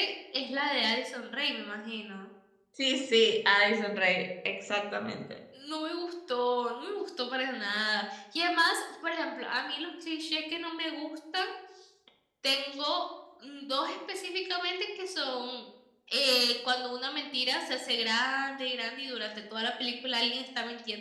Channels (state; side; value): identical; both; correlation 1.00